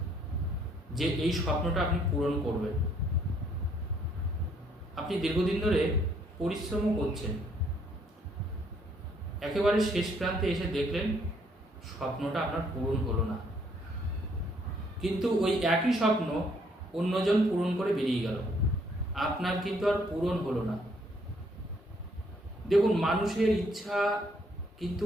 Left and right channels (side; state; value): both; normal; correlation 0.67